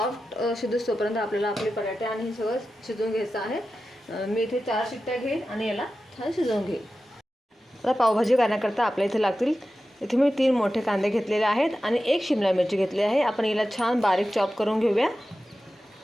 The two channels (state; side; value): normal; both; correlation 0.93